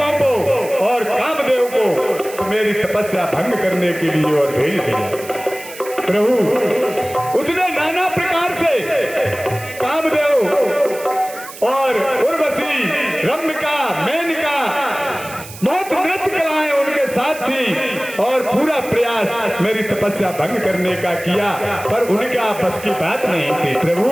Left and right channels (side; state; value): right; noise; hiss, 15 dB below the sound